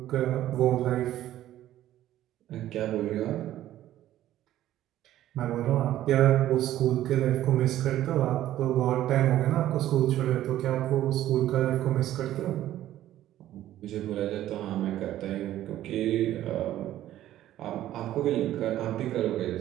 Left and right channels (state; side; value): quieter; left; 13.2 dB